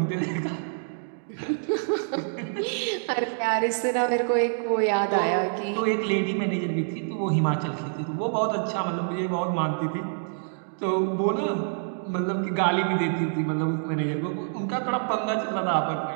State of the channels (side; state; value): left; silent; digital silence